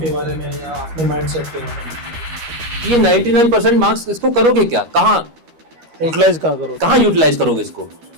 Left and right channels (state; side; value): late; left; 13 ms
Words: बारे में या अपने माइंडसेट के बारे में? ये 99% मार्क्स इसको करोगे क्या, कहाँ यूटिलाइज करोगे इसको?